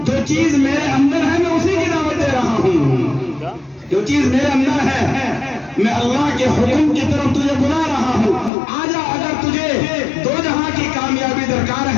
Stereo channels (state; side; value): drops out; right; at 8.5 s